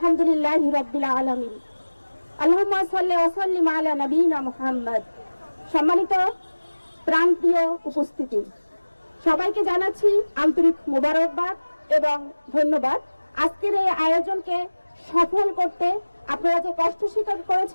রাব্বিল আলামিন। আল্লাহুম্মা সাল্লি ওয়া সাল্লিম আলা নবিয়িনা মুহাম্মদ। সম্মানিত প্রাণপ্রিয় উপস্থিতি, সবাইকে জানাচ্ছি আন্তরিক মোবারকবাদ এবং ধন্যবাদ। আজকের এই আয়োজনকে সফল করতে আপনারা যে কষ্ট স্বীকার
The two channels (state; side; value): inverted; both; correlation -1.00